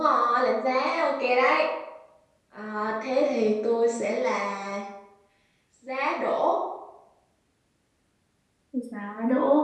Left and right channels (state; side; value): identical; both; correlation 1.00